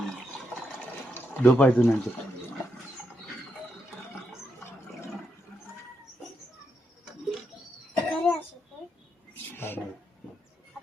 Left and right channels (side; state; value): both; normal; correlation 0.81